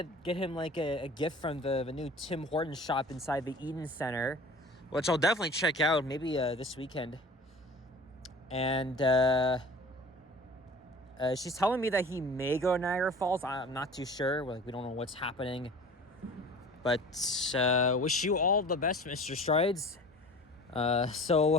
him like a gift from the new Tim Hortons shop inside the Eden Center, which I'll definitely check out maybe this weekend. And she's telling me that he may go to Niagara Falls. I'm not too sure. We don't know what's happening. But wish you all the best, Mr. Strides.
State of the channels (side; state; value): both; normal; correlation 0.42